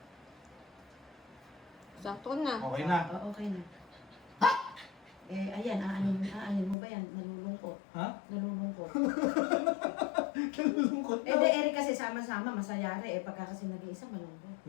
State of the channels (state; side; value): drops out; right; at 6.8 s